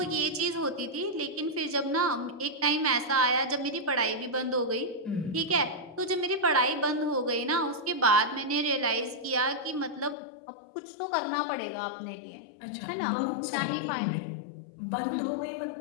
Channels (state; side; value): drops out; right; at 10.2 s